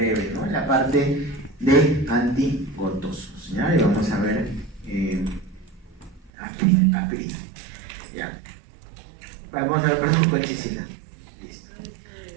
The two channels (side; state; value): left; drops out; at 6.3 s